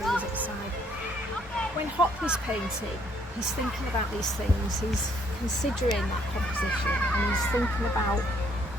at the side. When Hockney's painting, he's thinking about these things, he's considering that composition, and he's thinking about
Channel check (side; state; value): both; normal; correlation 0.67